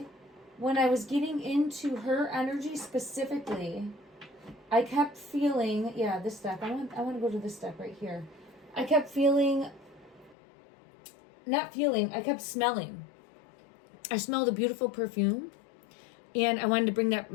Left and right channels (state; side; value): drops out; right; at 10.4 s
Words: when I was getting into her energy specifically, I kept feeling, yeah, this deck. I want to go to this deck right here. I kept feeling, I kept smelling. I smelled a beautiful perfume, and I wanted to bring that